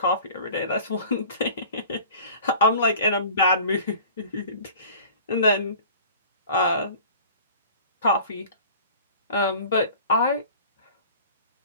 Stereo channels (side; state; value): both; inverted; correlation -0.43